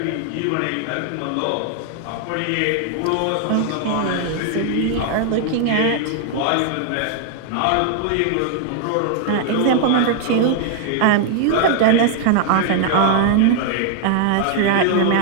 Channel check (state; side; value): different; both; correlation 0.00